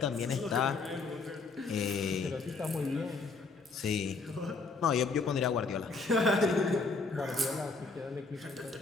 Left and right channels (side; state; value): right; quieter; 4.1 dB